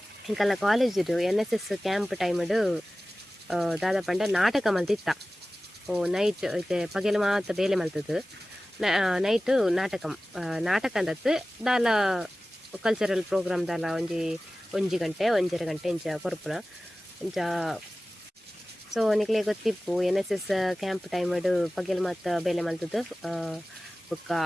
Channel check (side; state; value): both; normal; correlation 0.96